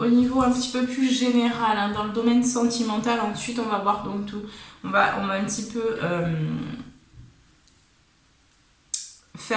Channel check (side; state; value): both; identical; correlation 1.00